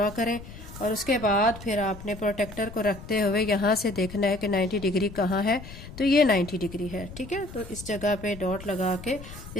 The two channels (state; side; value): noise; left; rumble, 14 dB below the sound